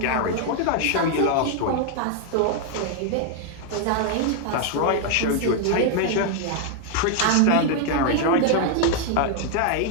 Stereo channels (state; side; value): different; both; correlation 0.00